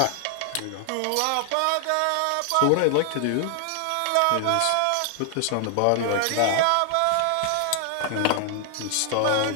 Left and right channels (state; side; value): different; both; correlation 0.00